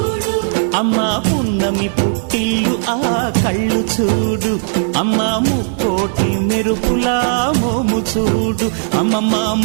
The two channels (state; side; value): silent; left; digital silence